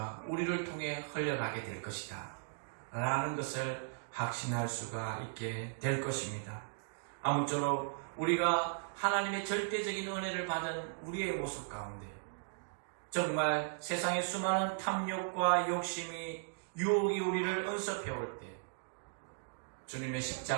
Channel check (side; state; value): left; silent; digital silence